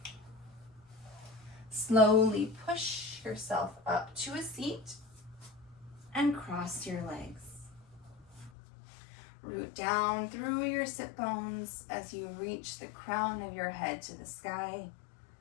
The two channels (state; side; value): drops out; right; at 8.5 s